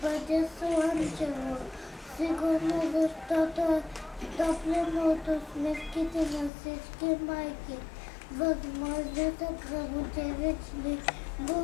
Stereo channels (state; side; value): drops out; right; at 6.5 s